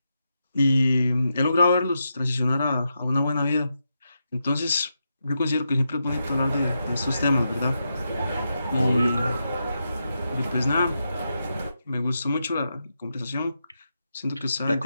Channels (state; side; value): inverted; both; correlation -0.85